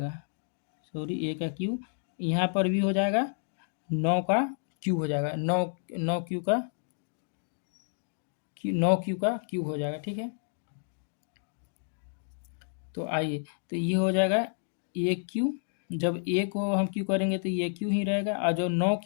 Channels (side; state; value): right; silent; digital silence